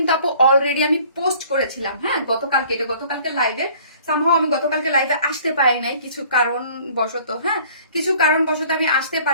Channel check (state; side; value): inverted; both; correlation -0.53